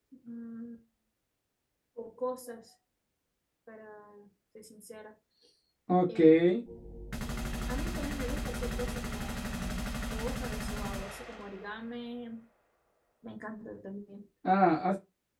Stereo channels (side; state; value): both; identical; correlation 1.00